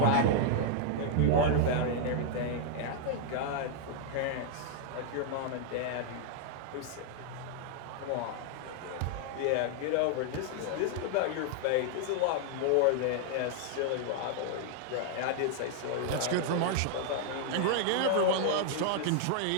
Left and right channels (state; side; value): different; both; correlation -0.01